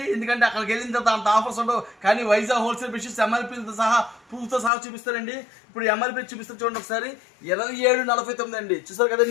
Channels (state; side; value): drops out; right; at 4.7 s